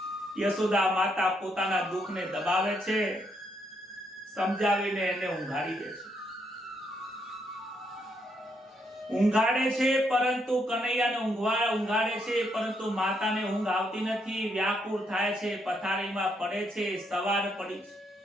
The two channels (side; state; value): both; normal; correlation 0.76